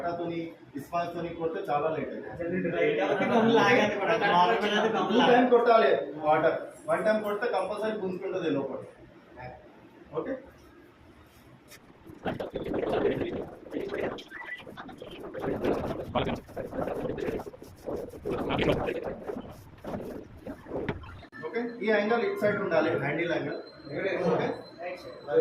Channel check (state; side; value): identical; both; correlation 1.00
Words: ఇస్మాల్తో కొడితే చాలా లేట్ అవుతుంది. 2 టైం కొట్టాలి వాటర్. 1 టైం కొడితే కంపల్సరీ గుంజుకుంటుంది లోపల. Okay, okay. ఈ యాంగిల్ ఇట్ సైడ్ ఉండాలి, హ్యాండిల్ యాంగిల్. ఓకే,